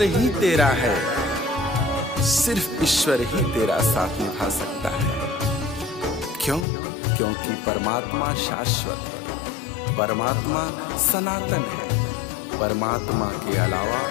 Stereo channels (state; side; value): drops out; right; at 6.7 s